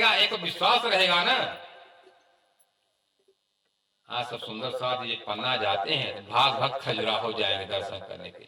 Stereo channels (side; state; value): both; identical; correlation 1.00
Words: एक विश्वास रहेगा ना। हाँ, सब सुंदर साथ ये पन्ना जाते हैं, भाग भाग खजुरा हो जाएंगे दर्शन करने के